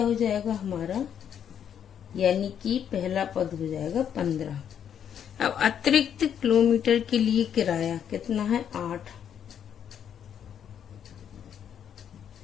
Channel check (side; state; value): right; quieter; 8.8 dB